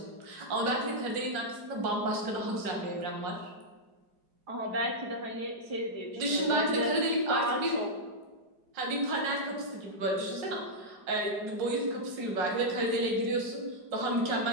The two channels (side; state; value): left; late; 4.9 ms